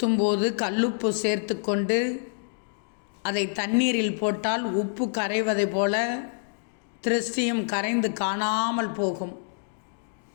கல்லுப்பு சேர்த்து கொண்டு அதை தண்ணீரில் போட்டால் உப்பு கரைவதை போல திருஷ்டியும் கரைந்து காணாமல் போகும்.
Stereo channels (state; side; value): silent; right; digital silence